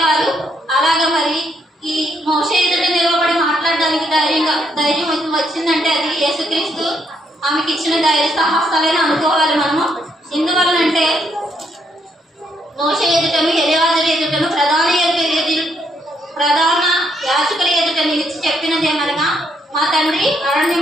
అలాగా మరి ఈ మోషే ఎదుట నిలబడి మాట్లాడడానికి ధైర్యం వచ్చిందంటే అది యేసుక్రీస్తు ఆమెకి ఇచ్చిన ధైర్య సాహసాలని అనుకోవాలి మనము. ఎందువల్లంటే మోషే ఎదుటను, ఎలియాజరు ఎదుటను, ప్రధాన యాజకుల ఎదుట నిలిచి చెప్పినదేమనగా, మా తండ్రి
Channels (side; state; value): both; normal; correlation 0.74